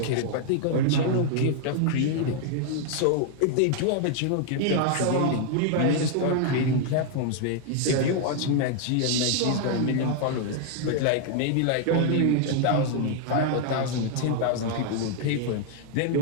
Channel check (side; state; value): both; different; correlation 0.00